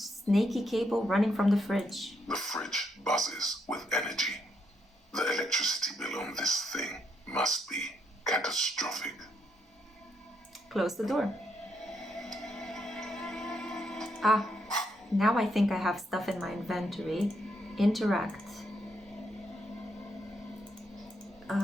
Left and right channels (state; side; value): normal; both; correlation 0.77